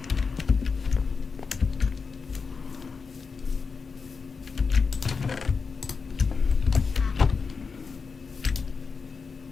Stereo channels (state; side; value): quieter; right; 5.1 dB